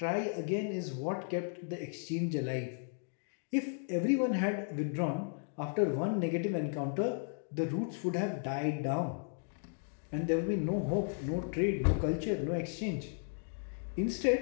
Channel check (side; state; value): right; silent; 55 dB below the other